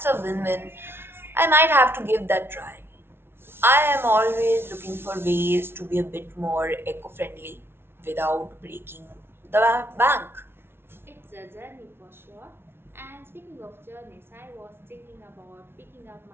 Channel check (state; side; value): late; left; 0.11 ms